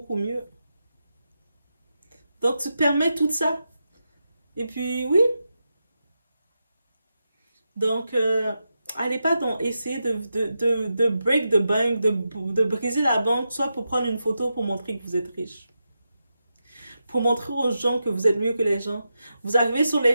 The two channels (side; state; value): both; inverted; correlation -0.88